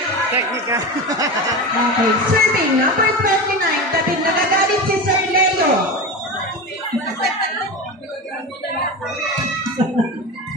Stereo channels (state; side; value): normal; both; correlation 0.24